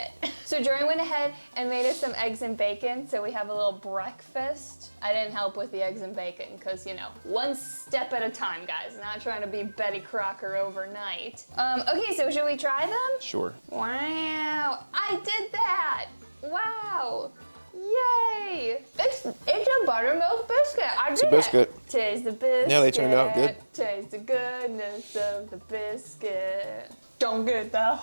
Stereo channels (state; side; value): inverted; both; correlation -1.00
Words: So Jordan went ahead and made us some eggs and bacon, so we have a little breakfast. I didn't help with the eggs and bacon, because you know, one step at a time, guys. Not trying to be Betty Crocker overnight. Okay, so should we try them? Sure. Wow, I did that. Wow, yay. It's a buttermilk biscuit, I did biscuit. it. Taste the biscuit. Yeah, they turned out good. Taste the goodness of the biscuit. Don't get that